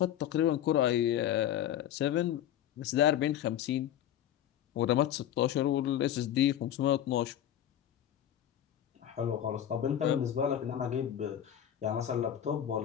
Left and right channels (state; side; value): quieter; right; 10.9 dB